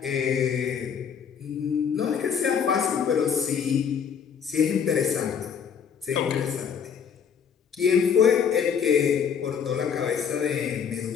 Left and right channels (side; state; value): right; quieter; 7.3 dB